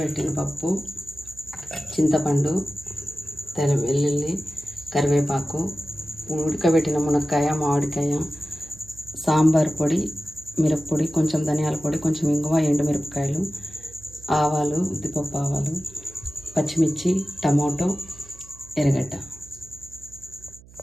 పప్పు, చింతపండు, వెల్లుల్లి, కరివేపాకు, ఉడకబెట్టిన మునక్కాయ, మామిడికాయ, సాంబార్ పొడి, మిరప్పొడి, కొంచెం ధనియాల పొడి, కొంచెం ఇంగువ, ఎండుమిరపకాయలు, ఆవాలు, ఉద్దిపప్పు ఆవాలు, పచ్చిమిర్చి, టమాటో, ఎర్రగడ్డ.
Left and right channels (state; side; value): noise; right; hum, 23 dB below the sound